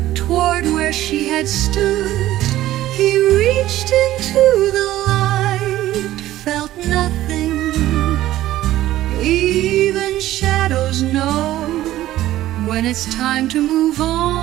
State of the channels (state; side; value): quieter; left; 14.5 dB